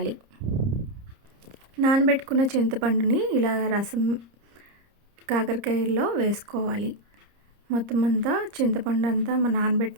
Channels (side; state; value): left; late; 30 ms